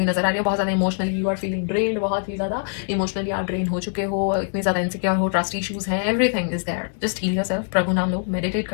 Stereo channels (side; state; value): right; silent; 63 dB below the other